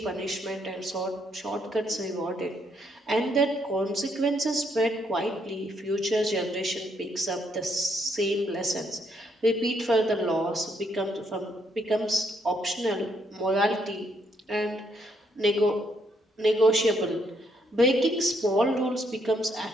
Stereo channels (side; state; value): both; normal; correlation 0.73